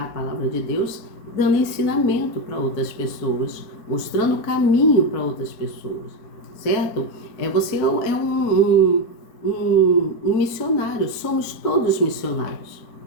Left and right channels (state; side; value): late; right; 4.5 ms